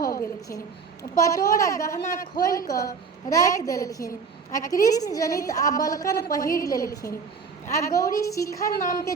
गेलखिन। पटोर आ गहना खोलि कऽ राखि देलखिन आ कृष्ण जनित आ बलकन पहिर लेलखिन। आ गौरी शिखर नाम के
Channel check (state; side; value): quieter; left; 5.5 dB